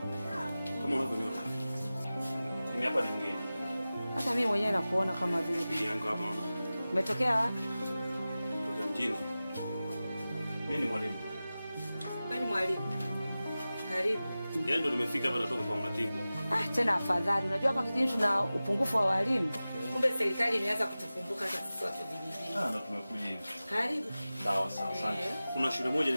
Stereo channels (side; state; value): both; inverted; correlation -0.96